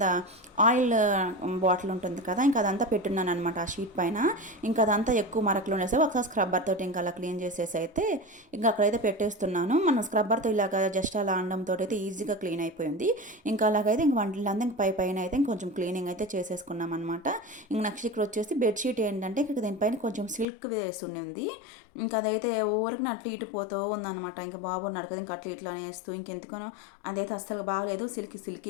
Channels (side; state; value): right; drops out; at 20.5 s